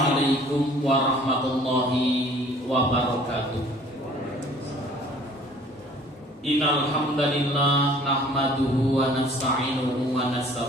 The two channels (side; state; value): both; normal; correlation 0.53